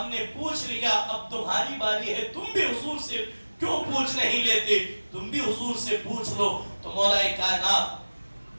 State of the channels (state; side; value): inverted; both; correlation -1.00